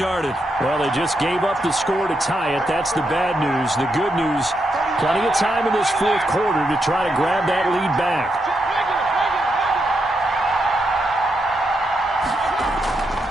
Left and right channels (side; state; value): both; normal; correlation 0.82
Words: Well, they just gave up the score to tie it. That's the bad news. The good news, plenty of time in this 4th quarter to try to grab that lead back.